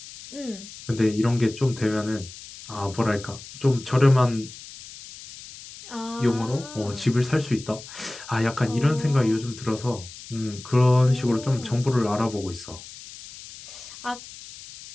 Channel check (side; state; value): left; noise; hiss, 16 dB below the sound